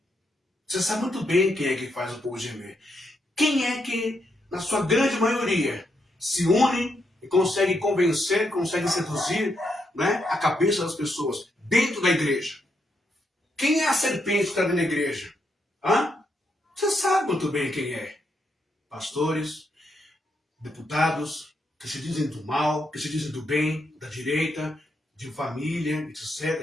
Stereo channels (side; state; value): both; normal; correlation 0.80